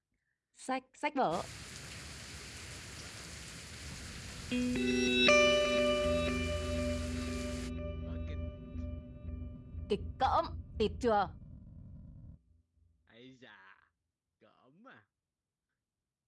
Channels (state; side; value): identical; both; correlation 1.00